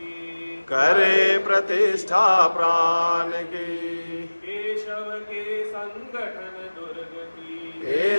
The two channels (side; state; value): both; inverted; correlation -1.00